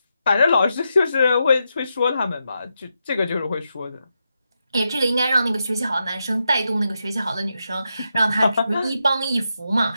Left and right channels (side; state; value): both; inverted; correlation -0.86